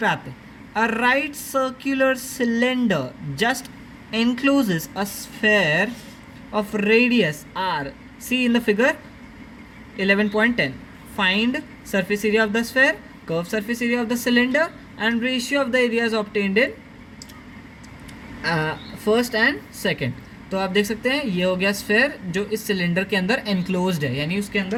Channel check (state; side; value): identical; both; correlation 1.00